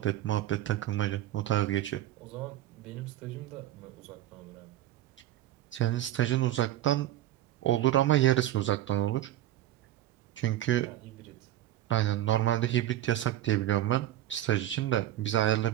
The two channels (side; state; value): left; quieter; 13.4 dB